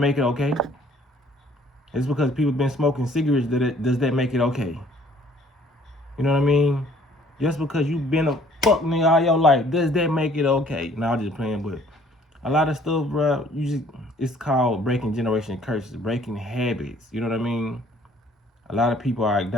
it okay? It's because people been smoking cigarettes, does that make it okay? You know what I mean? Just because you been a fuck nigga all your life, does that make it okay? No, I'm just playing, but a lot of stuff, bro, it's called breaking generation curses, breaking habits. You know what I mean? A lot of people are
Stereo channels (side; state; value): both; normal; correlation 0.58